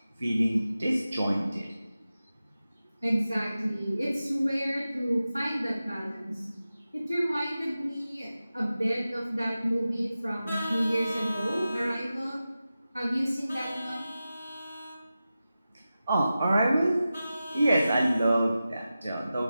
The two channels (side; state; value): both; inverted; correlation -0.94